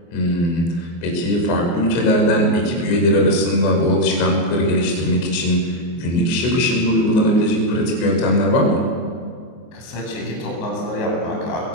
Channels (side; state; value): right; late; 24 ms